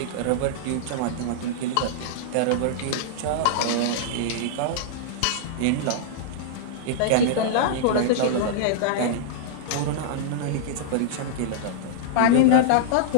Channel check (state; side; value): different; both; correlation -0.02